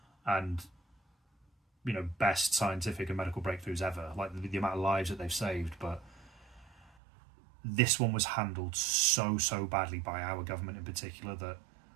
and, you know, best scientific and medical breakthroughs ever. Like the amount of lives that they've saved, but this one was handled so badly by our government in particular that,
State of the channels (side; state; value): left; drops out; at 6.9 s